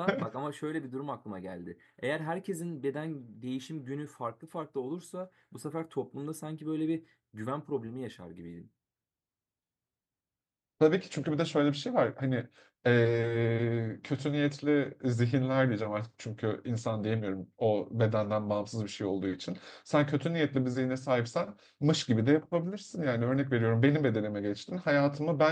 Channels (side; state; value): both; identical; correlation 1.00